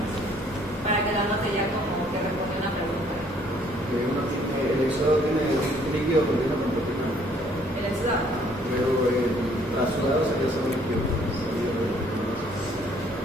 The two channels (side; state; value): both; normal; correlation 0.62